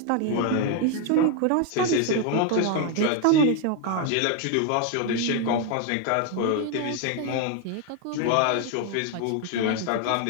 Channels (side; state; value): both; different; correlation 0.01